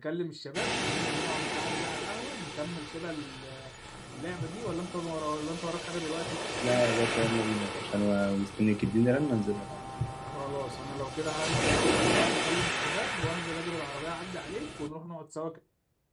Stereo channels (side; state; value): both; identical; correlation 1.00